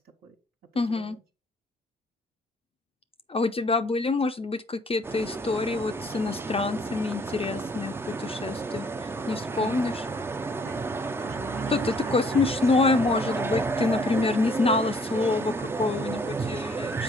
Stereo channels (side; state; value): both; normal; correlation 0.62